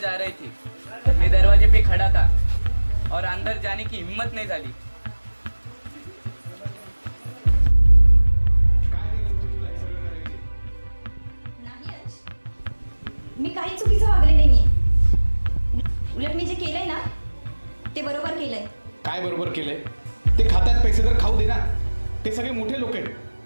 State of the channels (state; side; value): inverted; both; correlation -1.00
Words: आ रही थी. मैं दरवाजे पे खड़ा था और अंदर जाने की हिम्मत नहीं झाली. नाही अंश, मी काही चुकीचं वागले नाहीये. उलट मी जे केलंय ना ते बरोबर केलंय. काय बरोबर केलंय? ते खातात पैसे तर खाऊ दे ना. ते सगळे मोठे लोक आहेत.